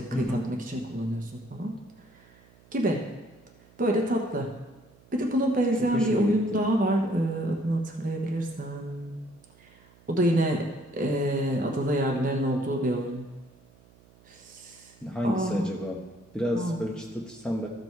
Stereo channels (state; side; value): noise; right; hum, 27 dB below the sound